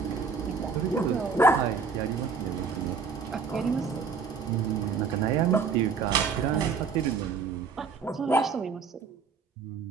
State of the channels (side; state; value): left; quieter; 5.2 dB